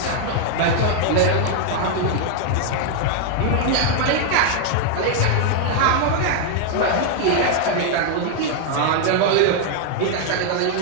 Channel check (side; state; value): both; different; correlation 0.00